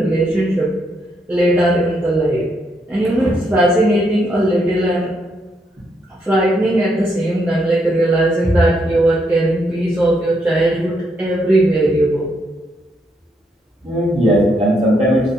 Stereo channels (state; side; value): normal; both; correlation 0.76